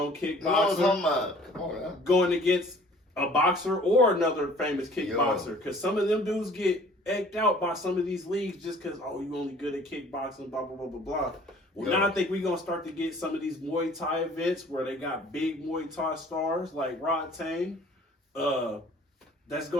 kickboxer, going against a boxer or another famous kickboxer. Because some of them dudes get egged out by some of these leagues just because, oh, you only good at kickboxing, blah, blah, blah, blah, blah. Well, now I think we're going to start to get some of these Muay Thai events where they got big Muay Thai stars like Rod Tang. That's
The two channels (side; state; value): both; normal; correlation 0.52